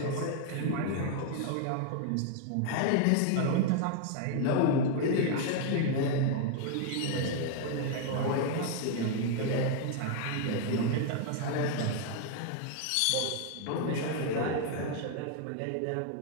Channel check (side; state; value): both; different; correlation 0.00